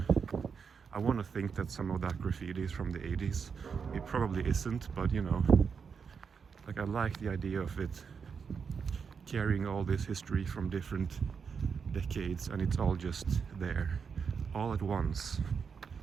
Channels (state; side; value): quieter; left; 6.1 dB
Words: I want to think that some of that graffiti is from the 80s. It probably isn't, but you know, like I like the idea of it carrying all this history from different decades, and it's all just there, all at once.